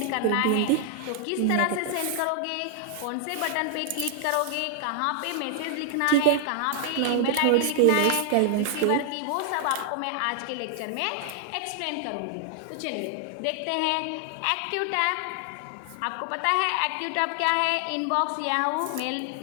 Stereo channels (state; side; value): different; both; correlation 0.00